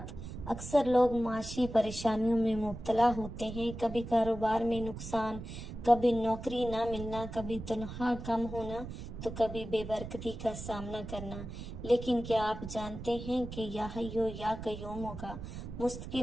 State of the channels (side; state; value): right; noise; rumble, 9 dB below the sound